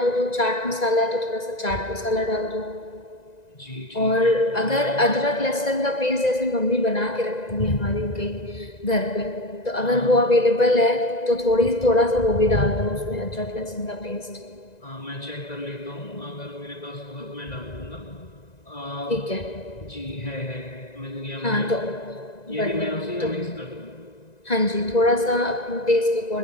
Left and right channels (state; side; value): late; right; 1.9 ms